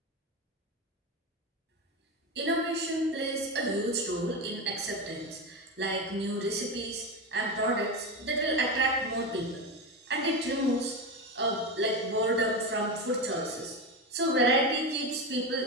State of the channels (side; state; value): both; normal; correlation 0.17